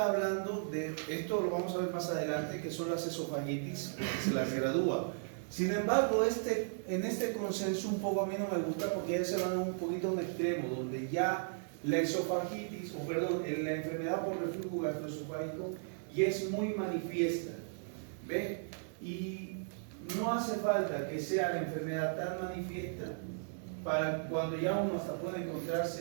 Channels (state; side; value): silent; left; digital silence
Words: hablando de, esto lo vamos a ver más adelante, que son las esofagitis, que se las gradúa. Sin embargo, en este consenso un poco a mí no me gusta porque ya se van un poquito a un extremo, donde ya la esofagitis, o perdón, la enfermedad por reflujo gastroesofágico y es muy manifiesta. ¿Ve? Y no hace falta que sea la enfermedad tan manifiesta para cuando ya uno hasta puede